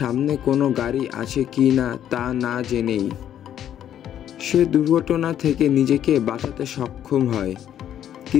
সামনে কোনো গাড়ি আছে কি না তা না জেনেই সে দুর্ঘটনা থেকে নিজেকে বাঁচাতে সক্ষম হয়,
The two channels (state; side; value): quieter; right; 10.4 dB